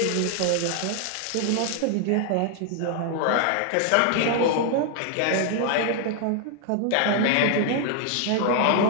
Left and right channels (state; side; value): different; both; correlation 0.00